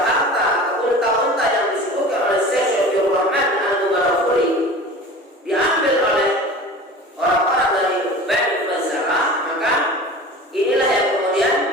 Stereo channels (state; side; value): normal; both; correlation 0.38